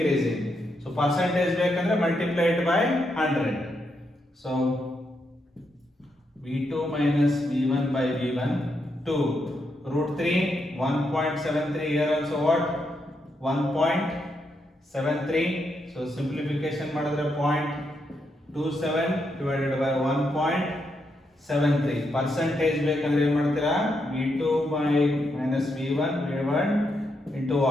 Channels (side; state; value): both; normal; correlation 0.81